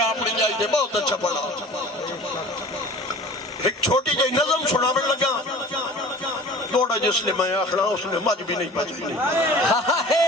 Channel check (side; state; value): both; normal; correlation 0.42